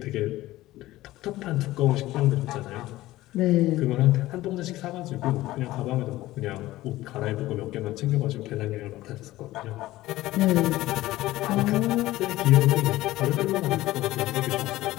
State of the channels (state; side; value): quieter; right; 16.7 dB